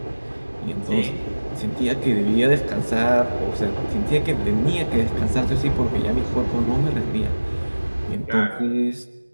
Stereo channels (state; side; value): inverted; both; correlation -1.00